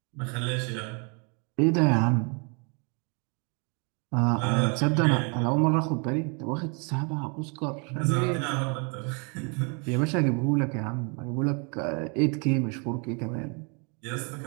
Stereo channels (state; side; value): quieter; left; 35.5 dB